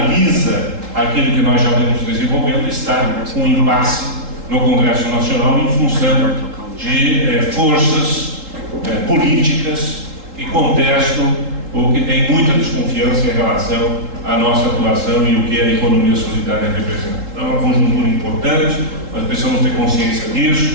aquilo que nós já vemos desenvolvendo, está com impasse no Congresso Nacional em função de forças políticas que contestam ou que tem muita desconfiança em relação à nossa atuação e o que a economia solidária representa. Então, é uma conjuntura importante, nós precisamos ter consciência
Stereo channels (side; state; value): left; late; 3.8 ms